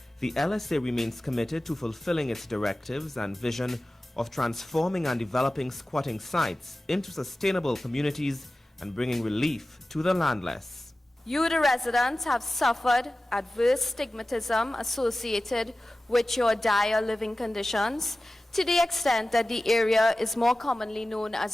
the LSA remains committed to fulfilling its directives and vision of transforming and developing squatting sites into sustainable communities and bringing relief to the landless. You, the residents, have suffered adverse stigmatism associated with your dire living conditions to the extent that the area is more commonly known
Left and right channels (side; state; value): both; normal; correlation 0.96